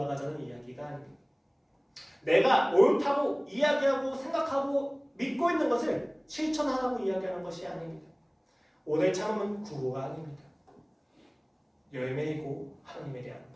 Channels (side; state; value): both; identical; correlation 1.00